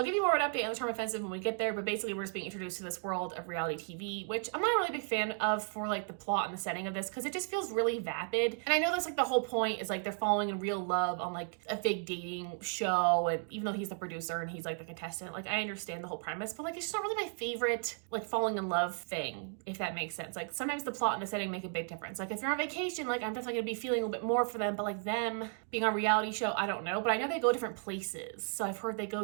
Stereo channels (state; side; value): silent; left; 55 dB below the other